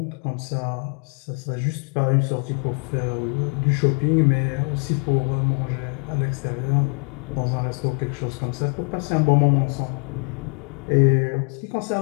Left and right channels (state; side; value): quieter; right; 36.8 dB